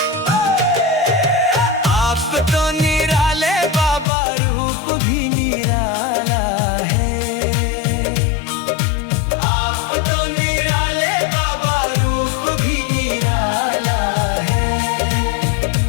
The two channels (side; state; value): right; drops out; at 4.0 s